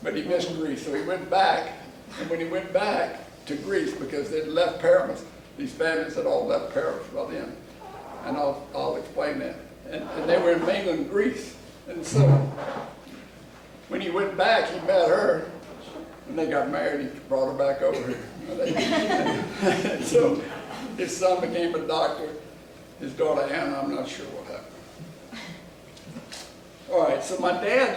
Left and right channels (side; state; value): both; identical; correlation 1.00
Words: but he missed Greece, so he went back, and when he went back to Greece, because they'd left Paris, these families had all left Paris by then, and I'll explain that, and they were in mainland Greece, and so when he went back, he met her, and they got married. He brought her back over here. And so his son became a doctor. His daughter Anna, I'm not sure what happened. All right, so my dad